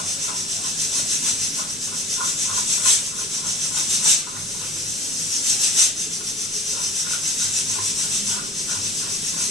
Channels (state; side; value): noise; left; rumble, 29 dB below the sound